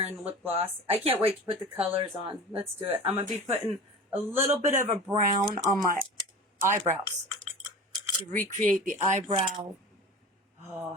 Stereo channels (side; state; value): both; normal; correlation 0.35